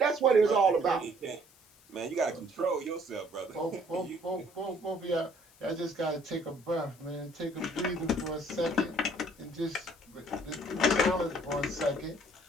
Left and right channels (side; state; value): left; noise; hiss, 27 dB below the sound